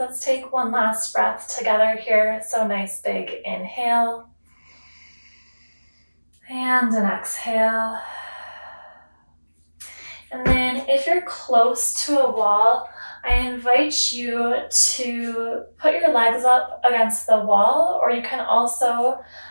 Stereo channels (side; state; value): both; inverted; correlation -1.00